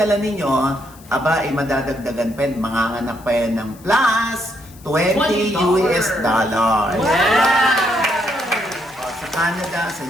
ninyo, aba, madadagdagan pa yan, manganganak pa yan ng plus $20 US. Sa Canada, sa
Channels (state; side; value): noise; left; hiss, 24 dB below the sound